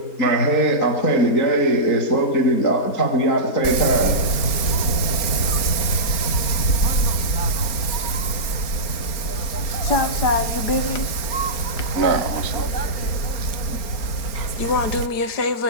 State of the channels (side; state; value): right; late; 4.4 ms